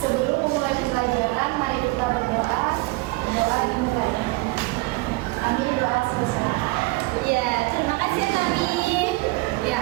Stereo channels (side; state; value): left; quieter; 22.9 dB